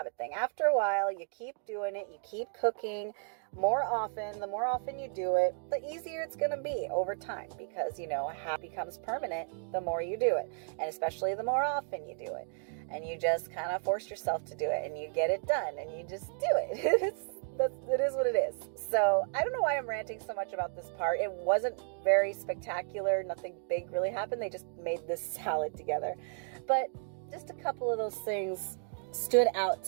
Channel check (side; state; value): left; silent; 55 dB below the other